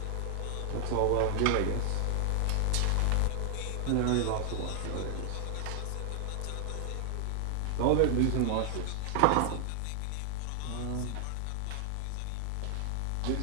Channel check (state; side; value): different; both; correlation -0.01